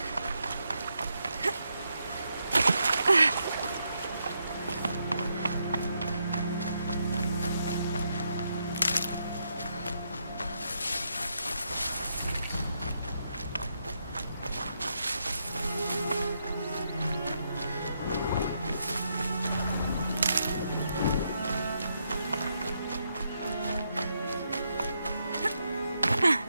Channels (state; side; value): inverted; both; correlation -0.80